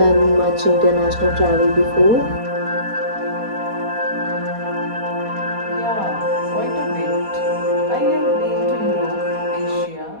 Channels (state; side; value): late; left; 4.2 ms